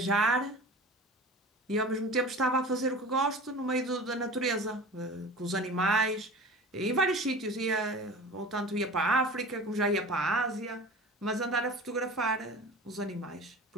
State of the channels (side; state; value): both; normal; correlation 0.37